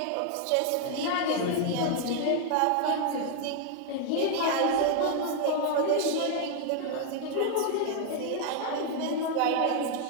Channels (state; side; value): different; both; correlation 0.00